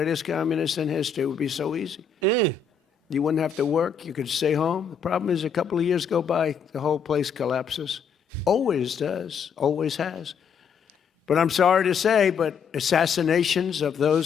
communist in history. It would be so easy. You wouldn't have to work. You could stay home. The problem is a couple of years go by, the whole place collapses. Always does. Always has. But I'm sorry to say, but assassinations of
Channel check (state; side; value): quieter; right; 6.2 dB